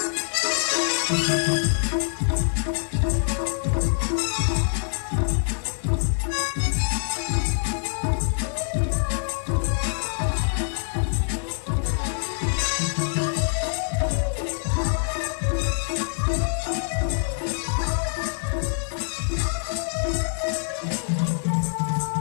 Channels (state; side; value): silent; right; digital silence